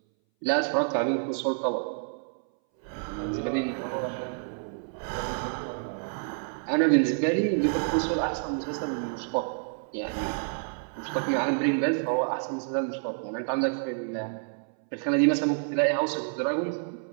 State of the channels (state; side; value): silent; left; 59 dB below the other